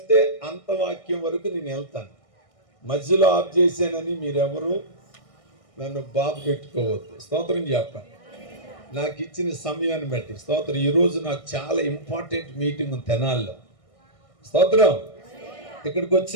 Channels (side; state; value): right; late; 1.6 ms